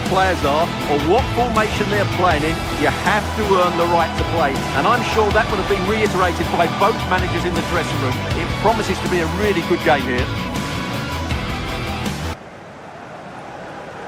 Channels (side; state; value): both; identical; correlation 1.00